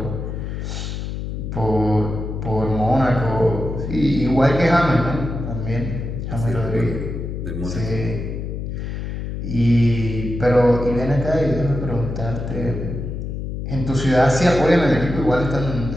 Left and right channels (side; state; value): left; noise; hum, 5 dB below the sound